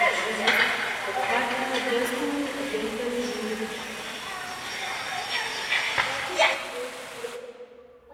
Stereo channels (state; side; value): identical; both; correlation 1.00